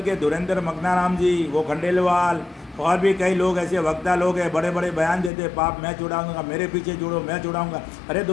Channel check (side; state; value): right; drops out; at 5.3 s